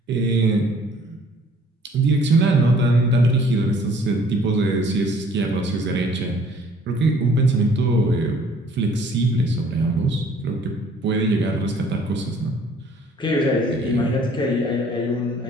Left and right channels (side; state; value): both; normal; correlation 0.57